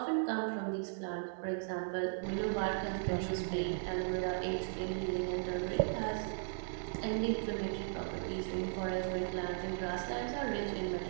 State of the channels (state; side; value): silent; left; 53 dB below the other